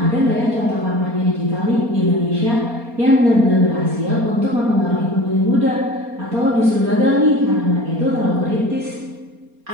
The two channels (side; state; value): left; late; 4.3 ms